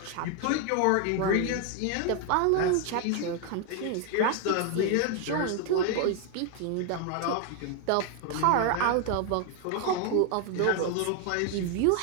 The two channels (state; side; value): different; both; correlation 0.00